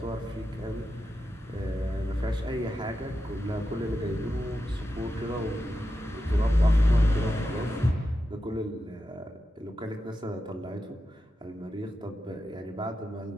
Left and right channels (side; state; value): both; normal; correlation 0.89